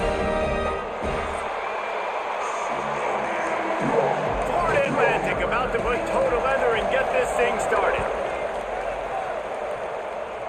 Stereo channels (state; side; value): identical; both; correlation 1.00